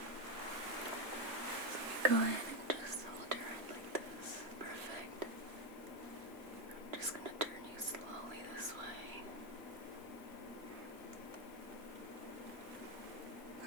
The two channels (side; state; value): left; late; 2.0 ms